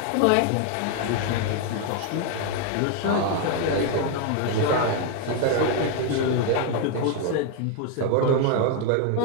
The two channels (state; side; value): different; both; correlation 0.01